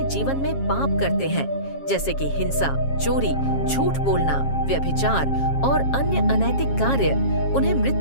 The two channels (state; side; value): late; right; 7.4 ms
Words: जीवन में पाप करते हैं, जैसे कि हिंसा, चोरी, झूठ बोलना, व्यभिचार और अन्य अनैतिक कार्य, उन्हें